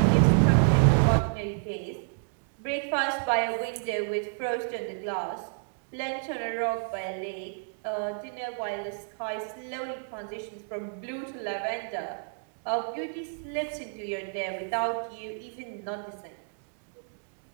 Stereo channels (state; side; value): silent; left; digital silence